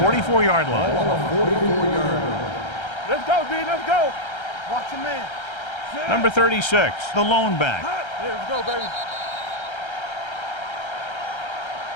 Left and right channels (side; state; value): right; late; 1.3 ms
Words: line. Ball on the 44-yard line. Let's go, D. Let's go. Watch your man. Number 36, the lone back. Let's go, baby.